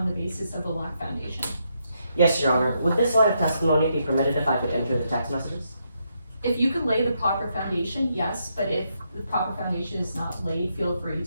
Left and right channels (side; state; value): both; inverted; correlation -0.79